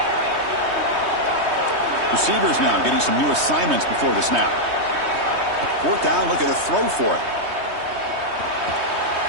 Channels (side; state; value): left; late; 3.2 ms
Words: Receivers now getting some new assignments before the snap. 4th down, looking to throw for it.